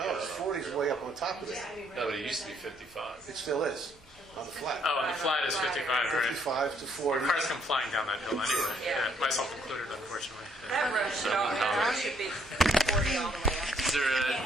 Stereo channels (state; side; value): normal; both; correlation 0.68